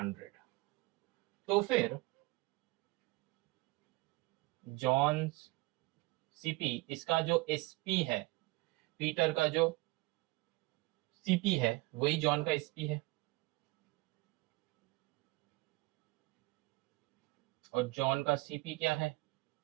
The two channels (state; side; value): quieter; left; 22.6 dB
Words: तो फिर जॉन्स सीपी, इसका जो एसपी है, पीटर का जो सीपी है वही जॉन का एसपी है, और जॉन का सीपी क्या है